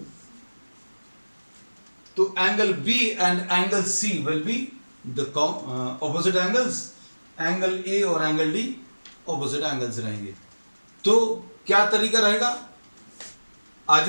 तो angle B and angle C will be the opposite angles, angle A और एंगल डी ऑपोजिट एंगल्स रहेंगे। तो क्या तरीका रहेगा?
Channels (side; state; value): both; inverted; correlation -1.00